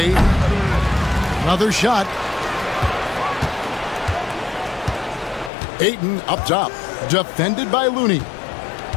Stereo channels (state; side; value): drops out; right; at 5.5 s